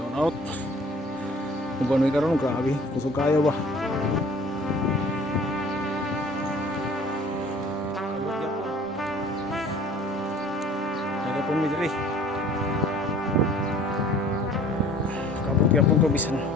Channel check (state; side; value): normal; both; correlation 0.50